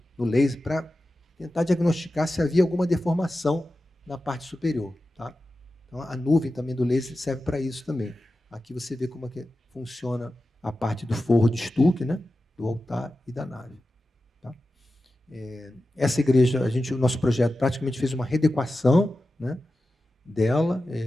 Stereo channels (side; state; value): both; normal; correlation 0.93